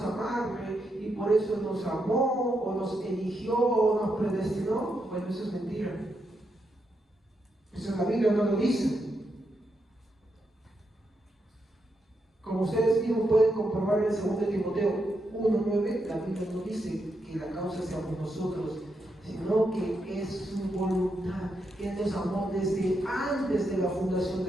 a amarle y por eso nos amó, o nos eligió, o nos predestinó. Bueno, eso es mentira. Eso en la Biblia no lo dice. Como ustedes mismos pueden comprobar en 2 Timoteo 1:9, la Biblia no dice que la causa seamos nosotros, sino que es su voluntad, que Él nos amó desde antes de la fundación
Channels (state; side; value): normal; both; correlation 0.82